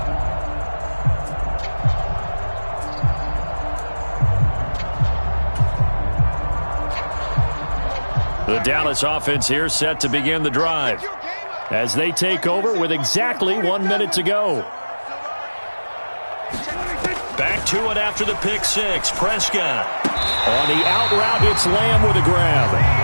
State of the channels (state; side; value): inverted; both; correlation -1.00